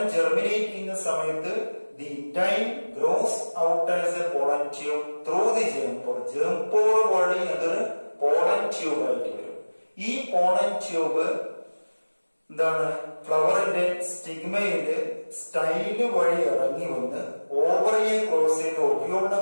germinate ചെയ്യുന്ന സമയത്ത് the intine grows out as a pollen tube through the germ pore. germ pore വഴി അതൊരു pollen tube ആയിട്ട് വരും. ഈ pollen tube എന്താണ്, ഫ്ലവറിന്റെ സ്റ്റിഗ്മയില് സ്റ്റൈല് വഴി ഇറങ്ങി വന്ന് ഓവറിയെ ക്രോസ് ചെയ്ത് ഒബ്യൂളിനെ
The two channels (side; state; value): both; inverted; correlation -1.00